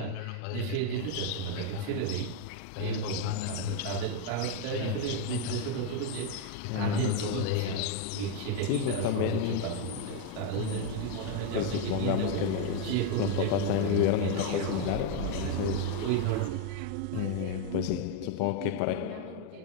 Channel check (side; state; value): both; different; correlation 0.01